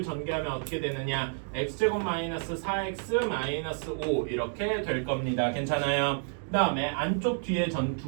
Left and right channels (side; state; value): left; silent; digital silence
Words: 전개하면 어떻게 되느냐? x제곱 마이너스 4x 마이너스 5 이렇게 될 겁니다. 괜찮아요? 그 다음에 안쪽 뒤에